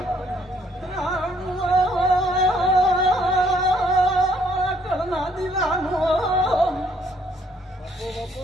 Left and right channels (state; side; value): normal; both; correlation 0.66